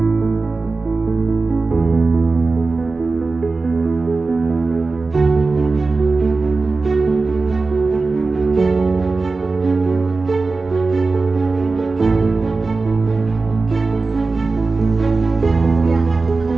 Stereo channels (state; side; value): quieter; left; 3.8 dB